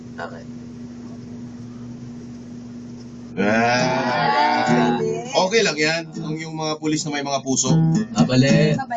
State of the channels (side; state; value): both; identical; correlation 1.00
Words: Okay lang yan. Yung mga pulis na may mga puso. Mabali.